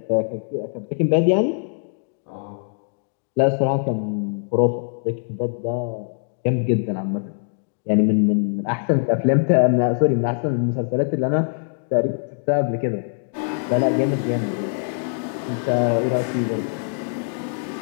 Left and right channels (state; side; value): silent; right; digital silence